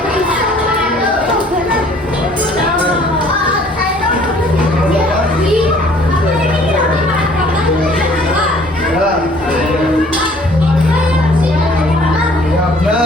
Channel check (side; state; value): both; normal; correlation 0.56